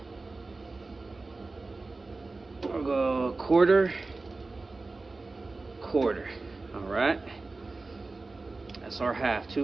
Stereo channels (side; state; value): left; quieter; 3.5 dB